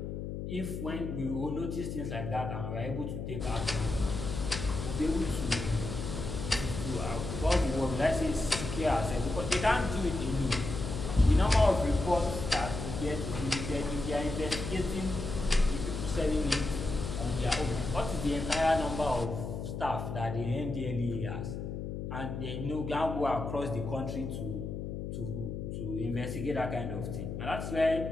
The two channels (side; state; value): left; noise; hum, 5 dB below the sound